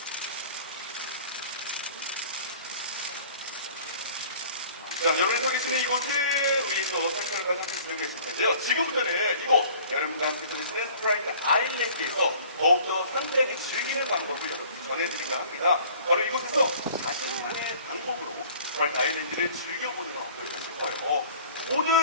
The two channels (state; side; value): inverted; both; correlation -0.49